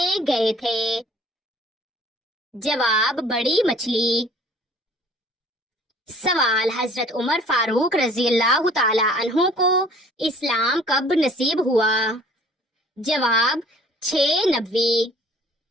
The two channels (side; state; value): both; normal; correlation 0.53